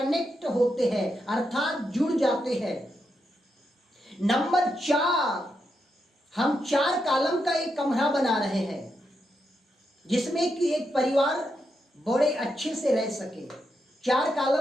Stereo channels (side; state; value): both; normal; correlation 0.83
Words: होते हैं, अर्थात जुड़ जाते हैं। नंबर 4, हम 4 कॉलम का एक कमरा बना रहे हैं जिसमें कि एक परिवार बड़े अच्छे से रह सके। 4